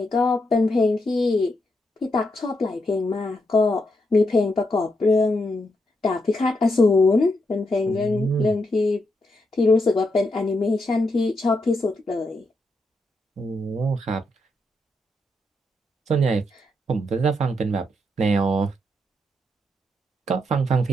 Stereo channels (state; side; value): normal; both; correlation 0.81